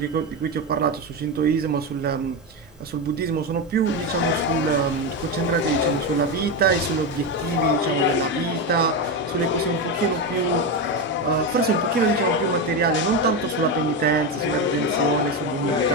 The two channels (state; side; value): normal; both; correlation 0.13